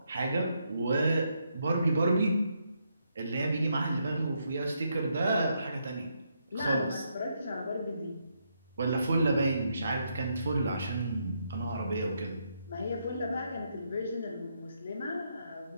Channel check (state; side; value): inverted; both; correlation -0.78